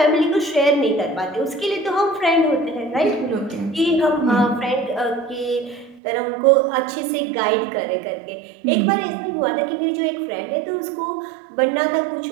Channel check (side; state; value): left; drops out; at 6.0 s